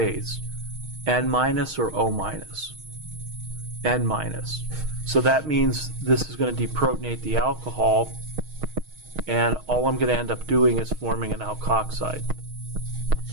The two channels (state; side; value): late; left; 6.4 ms